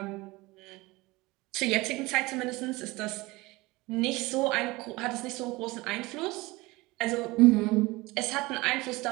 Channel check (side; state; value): left; quieter; 21.8 dB